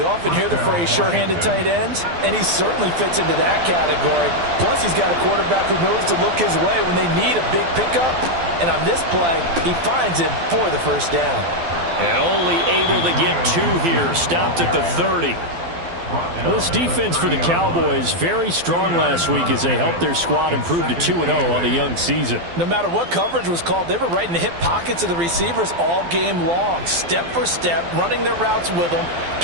often hear the phrase sure-handed tight ends, and he certainly fits into that category. Plus, he's got a quarterback who knows to look his way when they need a big pickup. And on this play, he finds him for the 1st down. And only able to get 2 here. Stopped at the 30. Well, this defense for the Cowboys, very strong last week as they helped their squad improve to 2-0 on the young season. No matter what coverage was called, they were right in the hip pockets of the receivers all game long. Step for step, running their routes with them.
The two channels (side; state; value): left; late; 12 ms